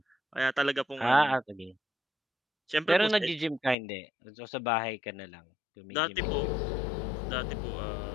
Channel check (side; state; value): right; drops out; at 3.8 s